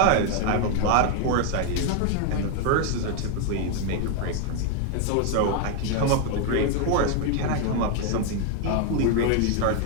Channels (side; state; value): both; different; correlation 0.01